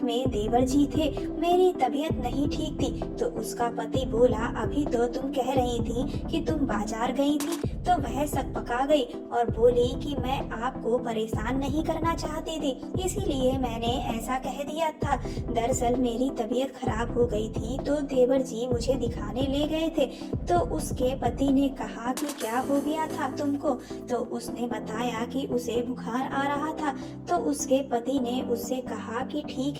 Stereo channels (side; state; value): both; identical; correlation 1.00